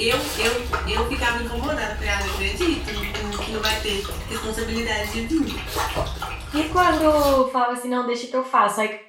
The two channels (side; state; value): both; identical; correlation 1.00